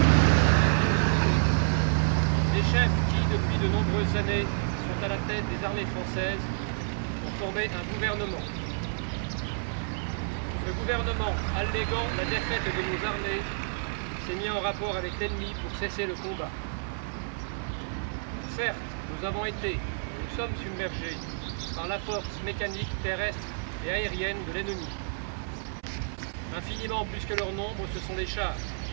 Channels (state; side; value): silent; left; 58 dB below the other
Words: Les chefs qui, depuis de nombreuses années, sont à la tête des armées françaises, ont formé un gouvernement. Le gouvernement, alléguant la défaite de nos armées, s'est mis en rapport avec l'ennemi pour cesser le combat. Certes, nous avons été, nous sommes submergés par la force mécanique, terrestre et aérienne de l'ennemi. Infiniment plus que leur nombre, ce sont les chars,